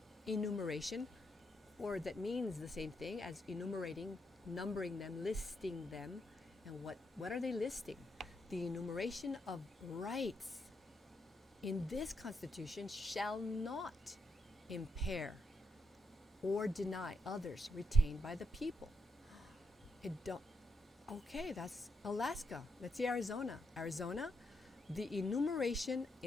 enumeration, or that means the same thing as enumerating, numbering them, listing them. And what are they listing? The enumeration of rights in this Constitution shall not impair or deny others retained by the people. Okay, that's Alaska. Let's see Arizona. Arizona, the enumeration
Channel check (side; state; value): both; normal; correlation 0.81